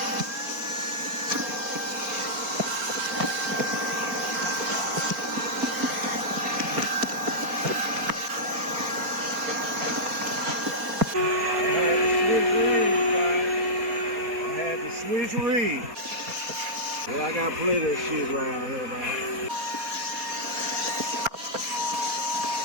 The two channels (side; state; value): left; late; 4.2 ms